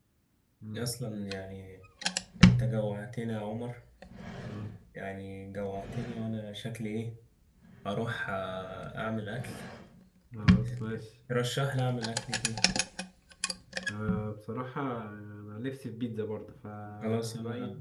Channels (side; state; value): both; identical; correlation 1.00